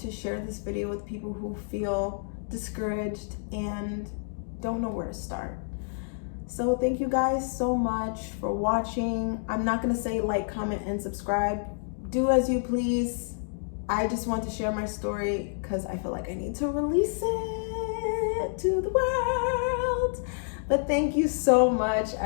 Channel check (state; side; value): silent; right; digital silence